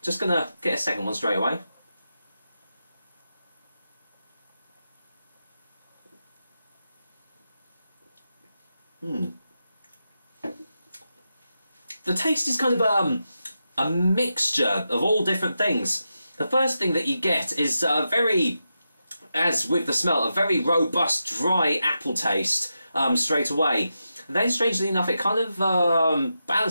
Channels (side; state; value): both; inverted; correlation -0.88